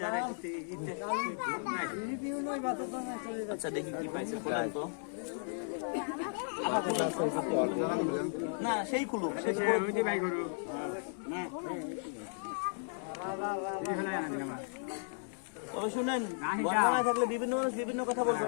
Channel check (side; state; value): right; silent; digital silence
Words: আচ্ছা, দেখি কি পাইছে বলেন তো। না, সেই খুলুক, তবে শুনেন, বর্তমানে থাকলে বিভিন্ন মানুষ বিভিন্ন কথা বলবে,